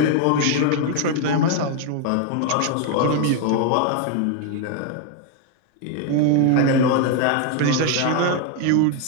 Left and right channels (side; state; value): both; different; correlation 0.01